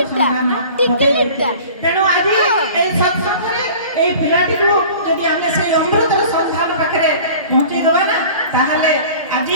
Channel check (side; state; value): both; inverted; correlation -0.43